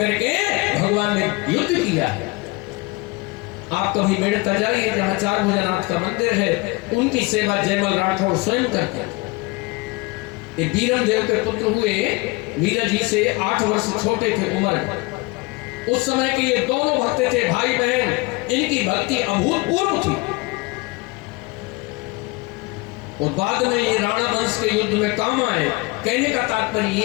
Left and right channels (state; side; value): quieter; right; 24.8 dB